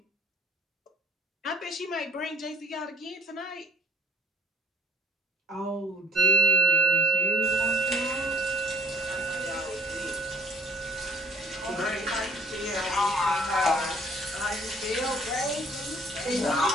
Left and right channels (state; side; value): normal; both; correlation 0.57